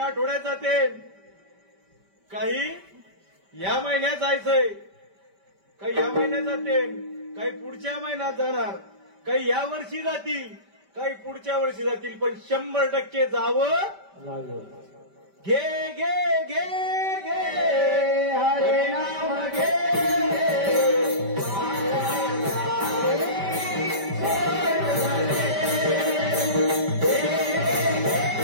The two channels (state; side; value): late; left; 5.1 ms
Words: आठवड्यात जाते, काही या महिन्यात जायचंय, काही या महिन्यात जाते, काही पुढच्या महिन्यात जाणार, काही या वर्षी जातील, काही पुढच्या वर्षी जातील, पण 100% जावं लागेल. घे घे घे घे हरे नाम घे